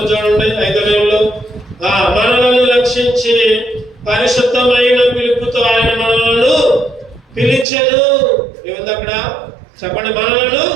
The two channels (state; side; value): drops out; left; at 7.7 s